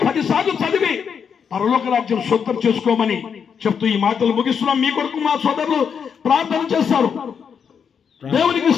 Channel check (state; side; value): quieter; right; 6.9 dB